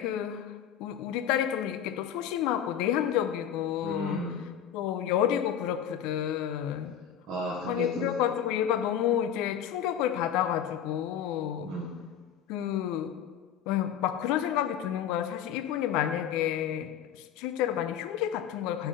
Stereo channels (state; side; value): quieter; right; 9.3 dB